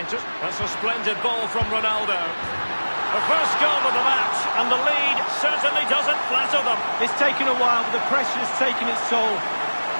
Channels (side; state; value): both; inverted; correlation -1.00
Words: That's a splendid ball from Ronaldo. The first goal of the match, and the lead certainly doesn't flatter them. It's taken a while, but the pressure has taken its toll.